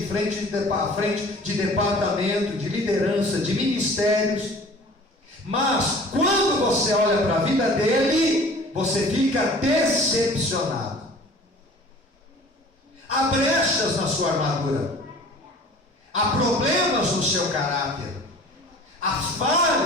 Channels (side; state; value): both; normal; correlation 0.46